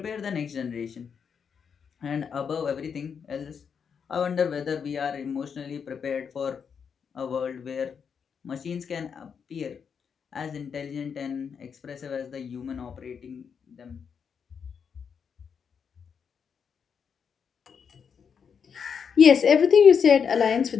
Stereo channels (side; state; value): right; quieter; 6.7 dB